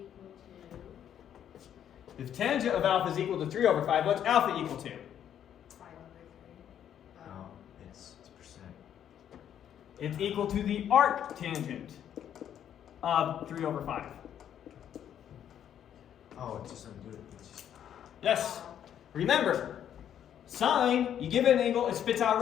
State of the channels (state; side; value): quieter; right; 9.8 dB